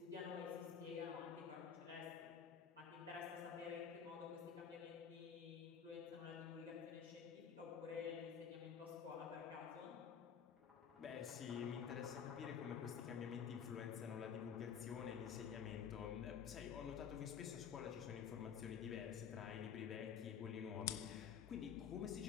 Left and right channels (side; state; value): right; quieter; 7.5 dB